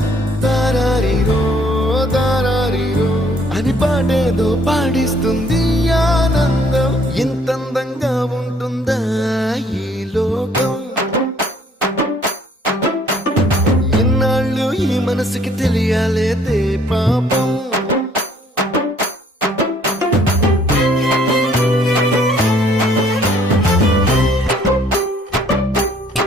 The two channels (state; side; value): normal; both; correlation 0.62